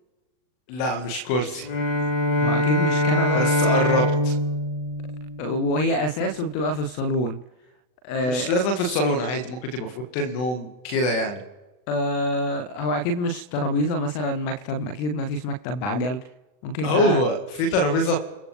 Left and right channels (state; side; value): late; right; 40 ms